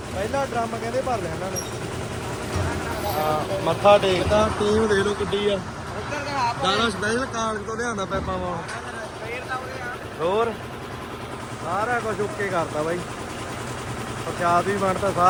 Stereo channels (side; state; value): both; identical; correlation 1.00